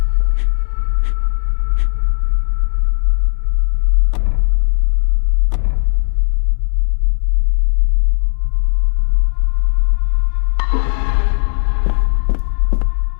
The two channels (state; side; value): silent; right; digital silence